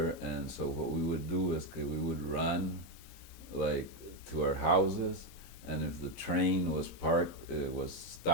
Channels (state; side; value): late; right; 23 ms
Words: and so what we would do is we would run like to our houses, and if the train was parked, it was